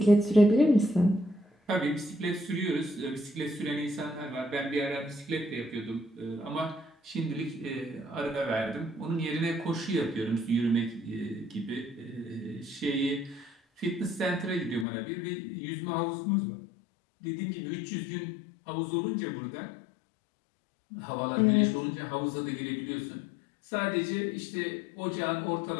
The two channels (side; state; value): right; drops out; at 14.9 s